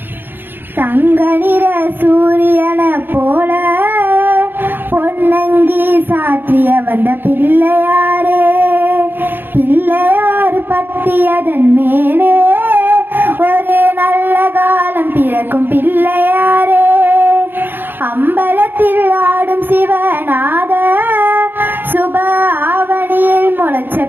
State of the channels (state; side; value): late; left; 0.098 ms